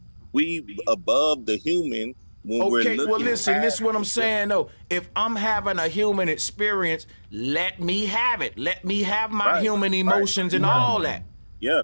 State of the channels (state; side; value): inverted; both; correlation -1.00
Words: We above the human when we're Okay, looking. well, listen, this is what I'm past saying, though. If I'm having a human experience, let me have it. Let me have my Right, human emotions and all that. Yeah.